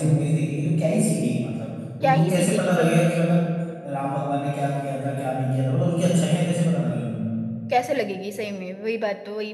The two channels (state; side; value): identical; both; correlation 1.00